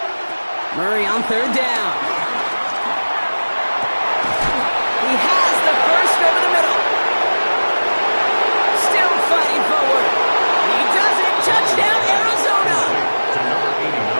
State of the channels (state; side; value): inverted; both; correlation -1.00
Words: Murray on 3rd down. He has the first over the middle. Still fighting forward. He does it. Touchdown, Arizona.